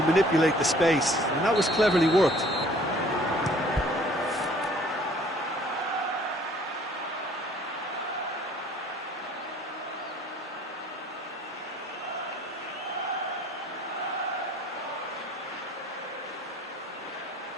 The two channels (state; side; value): normal; both; correlation 0.55